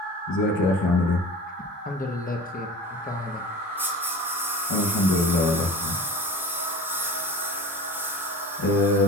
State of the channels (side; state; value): both; normal; correlation 0.35